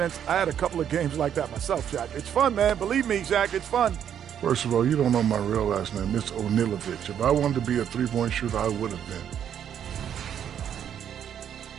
I had a couple of games like that myself, Shaq. It's fun, man. Believe me, Shaq, it's fun. First of all, you don't know my real last name. It's Onilovich. If I wanted to be a three-point shooter, I would have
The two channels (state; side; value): quieter; left; 9.2 dB